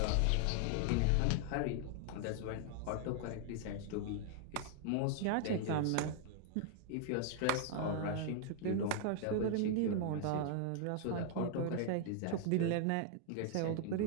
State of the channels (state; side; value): different; both; correlation 0.00